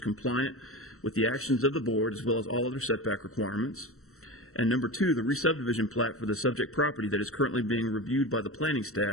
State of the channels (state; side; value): late; right; 0.63 ms